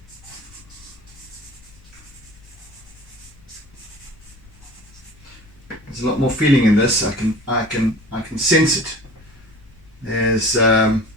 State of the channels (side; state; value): left; noise; rumble, 25 dB below the sound